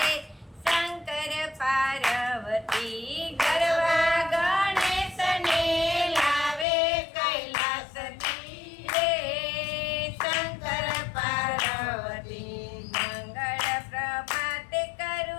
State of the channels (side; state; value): right; drops out; at 6.7 s